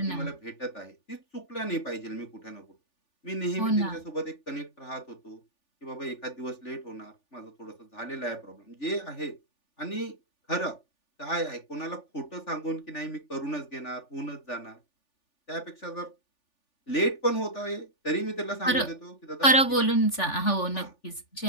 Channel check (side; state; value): right; late; 3.4 ms